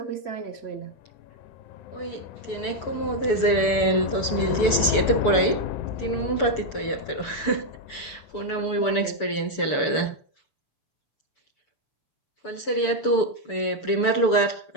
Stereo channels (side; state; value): right; late; 6.9 ms